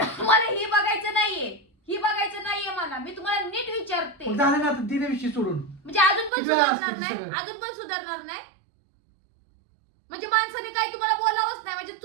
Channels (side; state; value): left; drops out; at 6.3 s